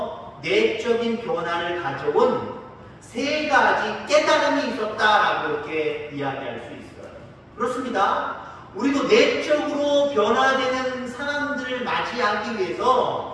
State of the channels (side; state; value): both; identical; correlation 1.00